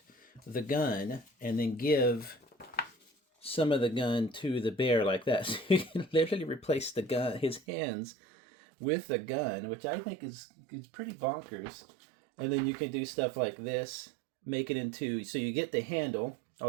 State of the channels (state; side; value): drops out; left; at 7.6 s